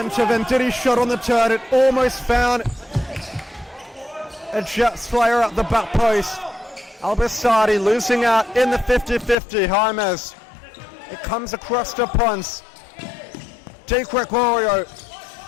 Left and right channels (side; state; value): right; drops out; at 9.3 s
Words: Venditti shot on the turn. It almost found a Jets player at the back post. Al-Basaidi losing out in the 50-50. James. It comes across to Ponce. Di Gregorio.